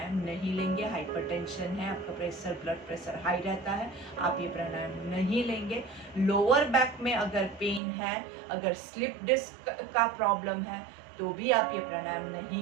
नहीं लेंगे। हाइपरटेंशन है, आपका प्रेशर, ब्लड प्रेशर हाई रहता है, आप ये प्राणायाम नहीं लेंगे। लोअर बैक में अगर पेन है, अगर स्लिप डिस्क का प्रॉब्लम है तो भी आप ये प्राणायाम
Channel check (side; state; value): left; drops out; at 7.8 s